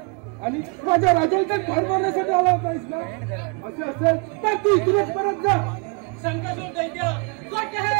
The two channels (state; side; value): quieter; left; 33.4 dB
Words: आणि माझ्या राजाला ठार मारण्यासाठी आला नाहीस ना? असं असेल तर तू इथूनच परत जा. शंकासूर दैत्य खोटे